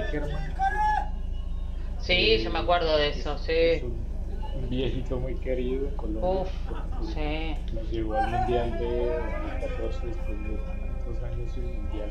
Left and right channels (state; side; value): identical; both; correlation 1.00